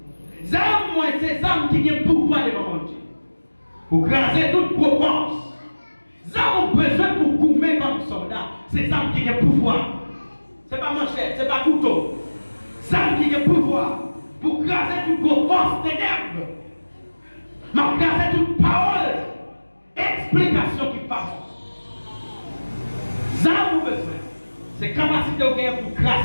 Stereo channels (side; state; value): both; inverted; correlation -1.00